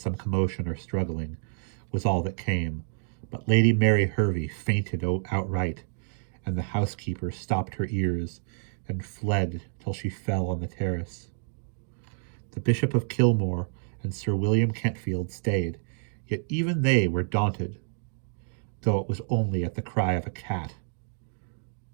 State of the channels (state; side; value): silent; left; 59 dB below the other